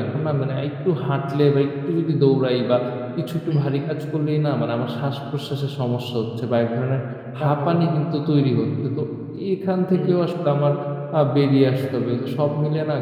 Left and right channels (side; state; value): both; identical; correlation 1.00